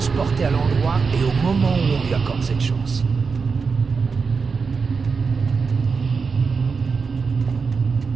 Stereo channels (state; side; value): quieter; left; 5.1 dB